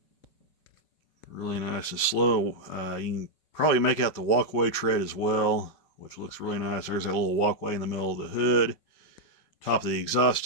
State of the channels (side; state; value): right; late; 5.4 ms